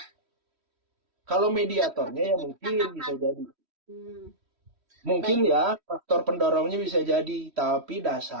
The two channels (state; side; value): late; left; 3.1 ms